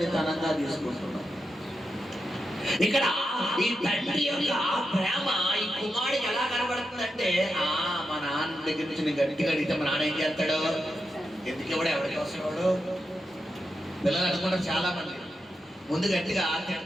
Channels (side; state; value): both; normal; correlation 0.87